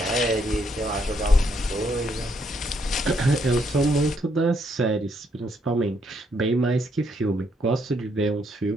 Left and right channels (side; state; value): both; normal; correlation 0.73